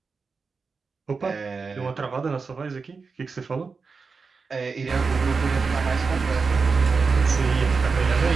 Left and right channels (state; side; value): quieter; left; 4.8 dB